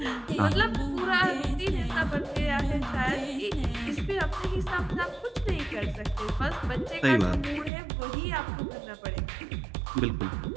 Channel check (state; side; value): drops out; left; at 7.7 s